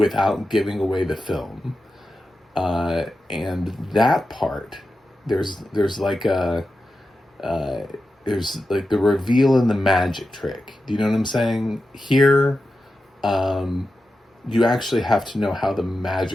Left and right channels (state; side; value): normal; both; correlation 0.91